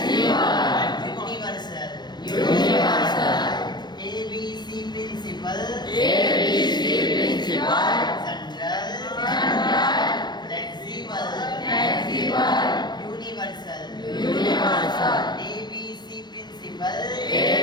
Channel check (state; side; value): late; right; 0.21 ms